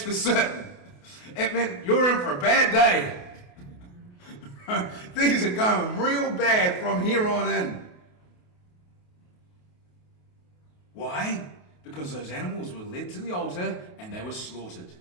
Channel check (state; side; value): late; right; 28 ms